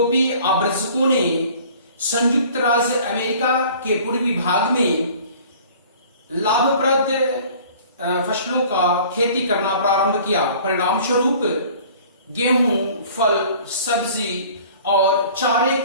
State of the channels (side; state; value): both; inverted; correlation -0.49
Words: आव्रजकों ने संयुक्त राज्य अमेरिका के पूर्वी भाग में लाभप्रद फसलों का खेती करना प्रारंभ किया। परिणाम स्वरूप गेहूं, फल, सब्जी और चारे